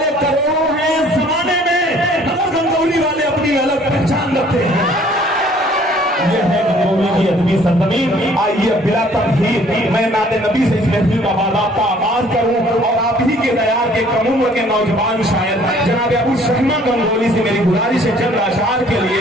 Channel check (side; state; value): both; normal; correlation 0.57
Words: करोड़ों हैं जमाने में, मगर गंगोली वाले अपनी अलग पहचान रखते हैं। ये है गंगोली की अदबी सरजमीन। आइए बिला तमहीर मैं नाते नबी से इस महफिल का बाज़ाब्ता आगाज करूं और आप ही के दयार के कम उम्र के नौजवान शायर जनाब अबू शहमा गंगोली से मेरी गुजारिश है चंद अशआर के लिए